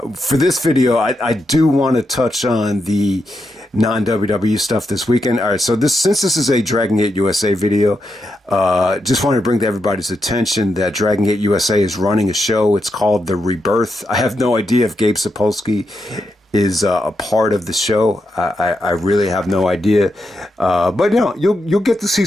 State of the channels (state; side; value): normal; both; correlation 0.84